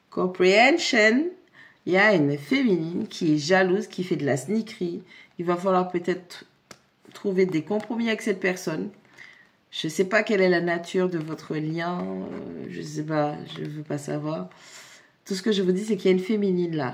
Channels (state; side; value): identical; both; correlation 1.00